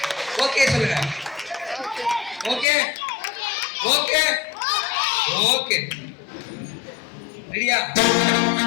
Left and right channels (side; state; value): right; drops out; at 2.7 s